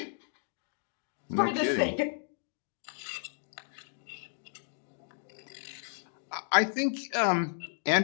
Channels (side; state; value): right; silent; digital silence